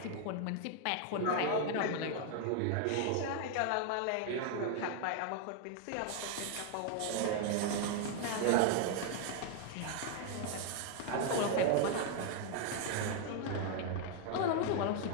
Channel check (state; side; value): different; both; correlation 0.00